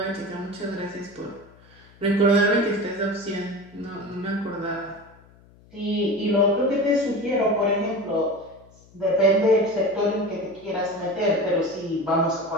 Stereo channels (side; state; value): left; noise; hum, 27 dB below the sound